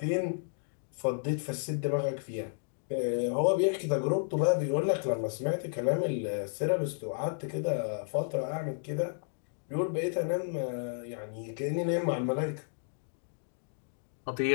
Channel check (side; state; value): right; silent; digital silence